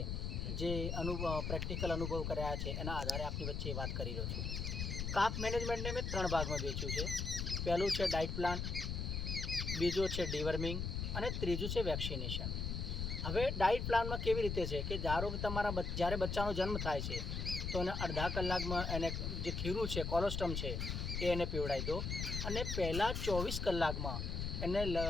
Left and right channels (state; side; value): noise; left; rumble, 2 dB below the sound